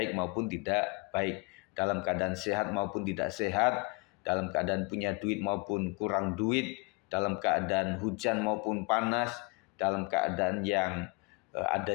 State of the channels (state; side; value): quieter; right; 28.7 dB